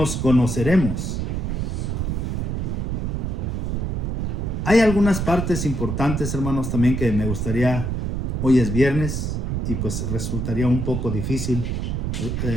conoceremos. Hay algunas partes importantes, hermanos, también que me gustaría, hoy es viernes y pues resultaría un poco difícil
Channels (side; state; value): right; noise; rumble, 1 dB below the sound